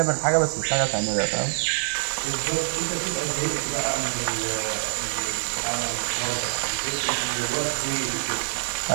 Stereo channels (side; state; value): left; silent; digital silence